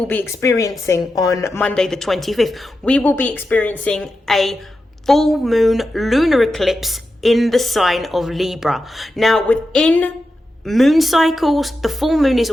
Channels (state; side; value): normal; both; correlation 0.90